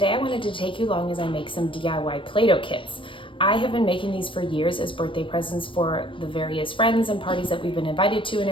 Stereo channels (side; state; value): right; late; 0.25 ms